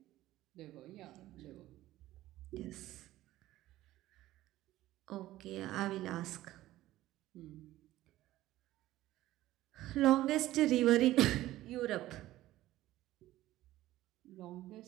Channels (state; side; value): quieter; left; 15.5 dB